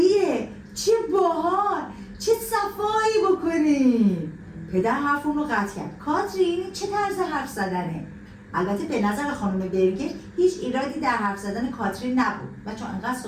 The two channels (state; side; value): identical; both; correlation 1.00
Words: چه باحال، چه صفایی بکنیم. پدر حرف اون رو قطع کرد. کاترین چه طرز حرف زدنه؟ البته به نظر خانم برگر هیچ ایرادی در حرف زدن کاترین نبود و چون انقدر